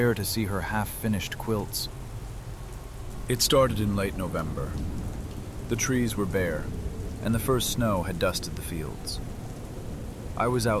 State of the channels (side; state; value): both; identical; correlation 1.00